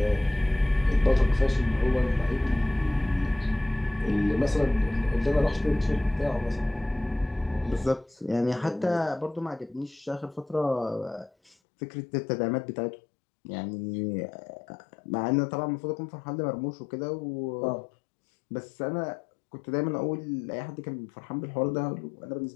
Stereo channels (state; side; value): drops out; right; at 11.6 s